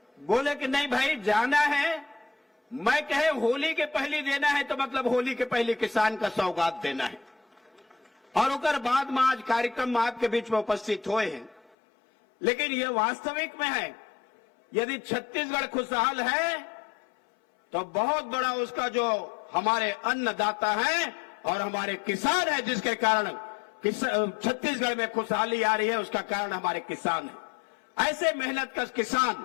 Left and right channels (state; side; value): drops out; right; at 11.7 s